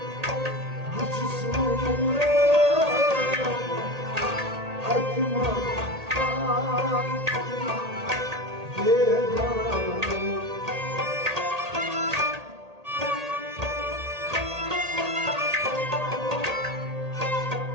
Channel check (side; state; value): left; late; 1.8 ms